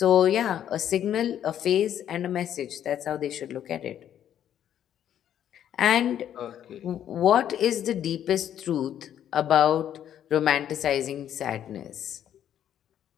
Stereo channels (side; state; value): right; quieter; 10.3 dB